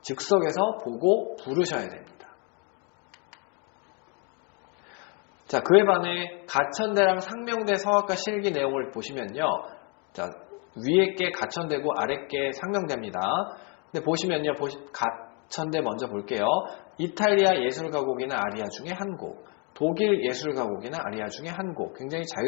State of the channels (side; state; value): right; quieter; 35.0 dB